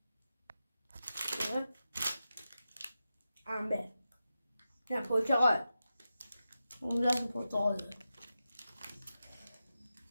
انبه نه پرتقال. اون دست پرتقال ده.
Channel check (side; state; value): both; inverted; correlation -0.91